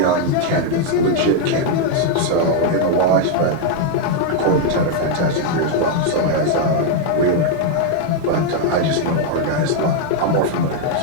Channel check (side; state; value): both; different; correlation 0.00